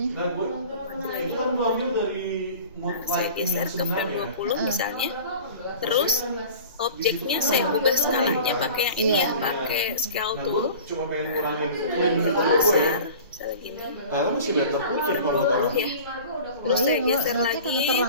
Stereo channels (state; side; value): inverted; both; correlation -0.41